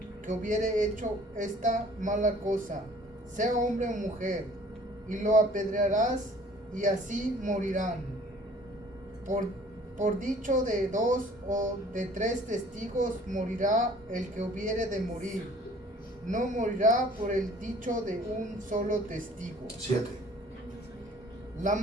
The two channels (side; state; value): both; normal; correlation 0.53